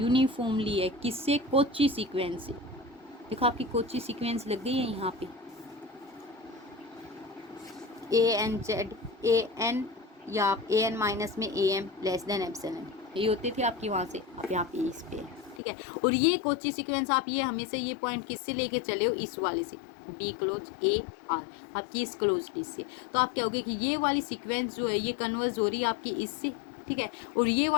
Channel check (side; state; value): right; drops out; at 15.6 s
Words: यूनिफॉर्मली है, किससे, कोची सीक्वेंस से। देखो आपकी कोची सीक्वेंस लग गई है यहाँ पे, A N Z A N, या आप ए एन माइनस में A M less than epsilon, ये होती थी आपकी वहाँ से, आप यहाँ पे इस पे है। ठीक है, और ये कोची सीक्वेंस आप ये हमेशा ये पॉइंट किससे लेके चले हो, इस वाले से, बी क्लोज ए आर आपकी इस क्लोज लिस्ट से। तो आप क्या होगे कि ये वाली सीक्वेंस जो है ये कन्वर्स हो रही है आपकी इससे। ठीक है, और ये